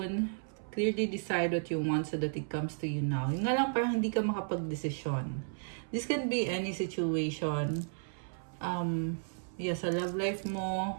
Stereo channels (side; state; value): left; silent; 55 dB below the other